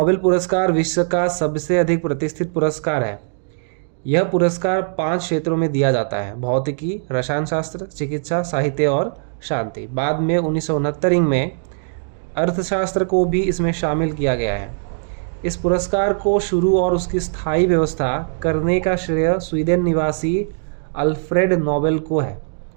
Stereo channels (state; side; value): silent; left; digital silence